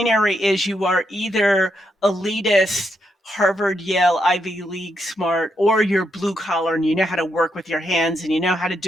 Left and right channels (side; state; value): both; normal; correlation 0.80